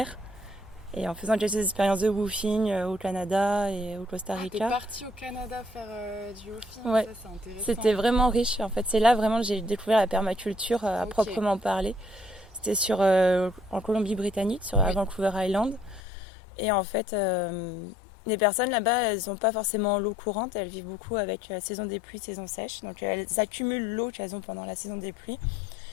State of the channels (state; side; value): drops out; right; at 16.0 s